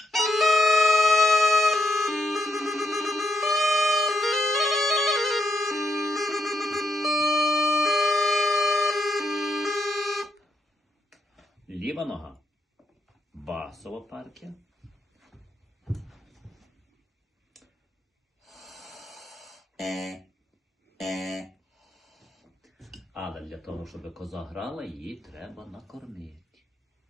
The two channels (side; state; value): both; normal; correlation 0.78